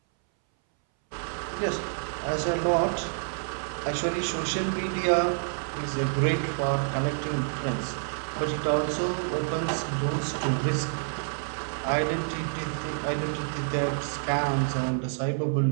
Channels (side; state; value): left; silent; 59 dB below the other